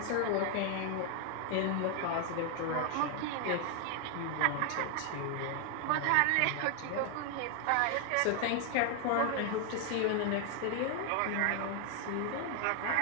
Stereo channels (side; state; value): both; different; correlation 0.00